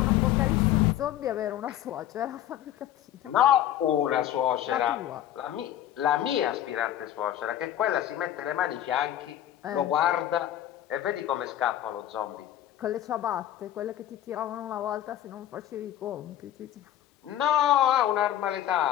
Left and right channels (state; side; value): quieter; right; 12.1 dB